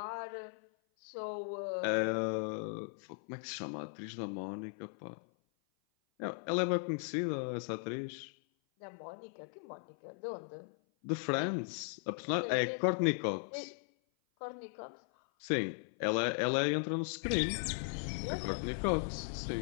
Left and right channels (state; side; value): silent; right; 53 dB below the other